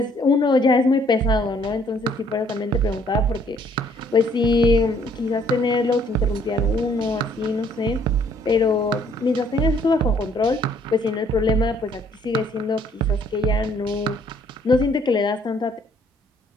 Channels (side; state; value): both; normal; correlation 0.63